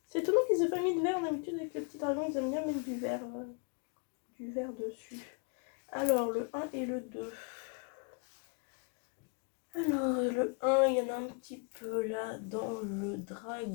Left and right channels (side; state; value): right; quieter; 37.6 dB